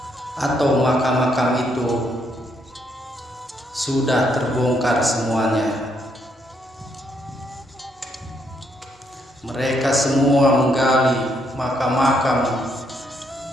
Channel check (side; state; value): both; normal; correlation 0.74